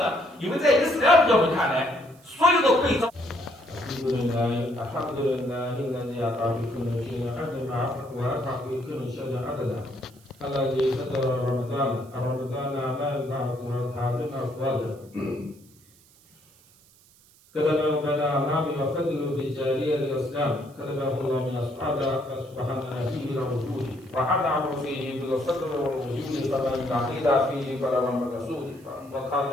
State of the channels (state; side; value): noise; right; hiss, 28 dB below the sound